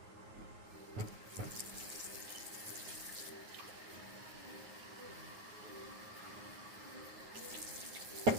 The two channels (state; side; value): late; left; 9.4 ms